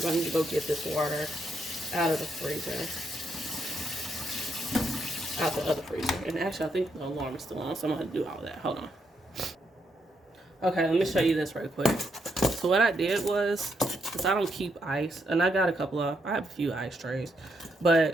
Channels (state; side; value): normal; both; correlation 0.78